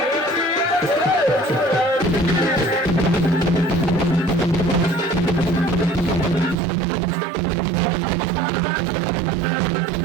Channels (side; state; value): left; drops out; at 6.6 s